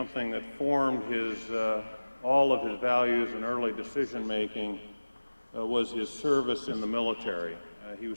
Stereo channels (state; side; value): inverted; both; correlation -1.00